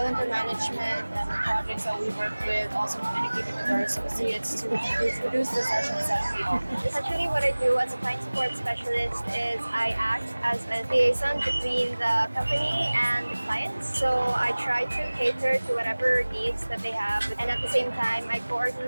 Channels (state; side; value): inverted; both; correlation -1.00